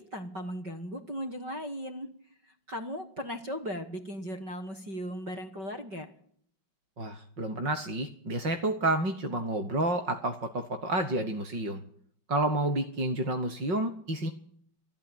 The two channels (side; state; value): left; late; 5.5 ms